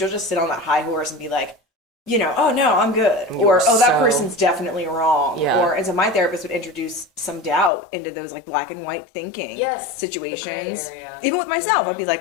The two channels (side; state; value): right; drops out; at 7.7 s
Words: just sit on that high horse and be like, you know, oh no, I'm good. Or, oh, that person's definitely wrong. Yeah. Or, and so my therapist would introduce some doubt into those, like, black and white thinking situations. The gray area. Even with myself, I'd be like,